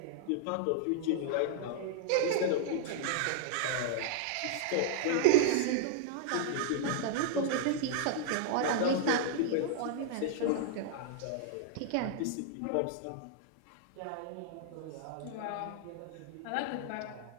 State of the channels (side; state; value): both; different; correlation -0.01